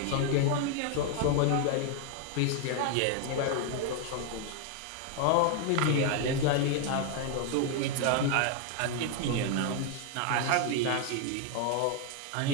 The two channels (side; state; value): both; different; correlation 0.01